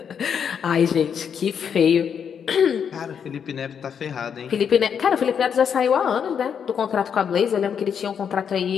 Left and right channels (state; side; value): quieter; right; 7.5 dB